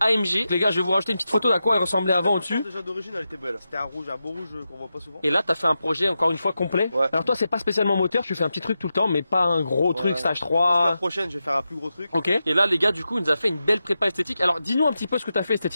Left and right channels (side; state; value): both; inverted; correlation -0.90